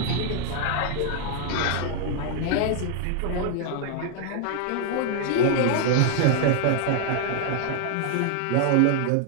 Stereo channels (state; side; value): different; both; correlation 0.00